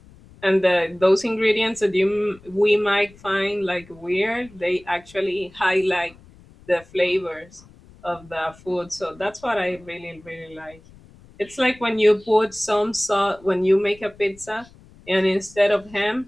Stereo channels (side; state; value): left; noise; rumble, 24 dB below the sound